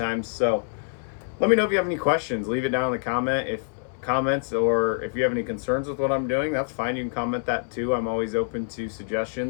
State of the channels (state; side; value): silent; right; 61 dB below the other